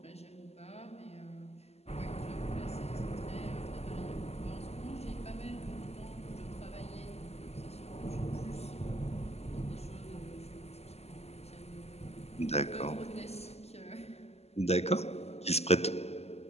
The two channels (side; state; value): right; late; 0.30 ms